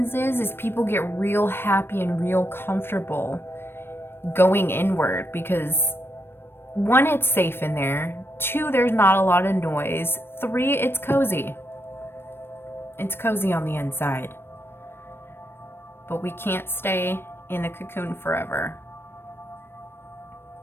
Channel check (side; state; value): right; late; 0.11 ms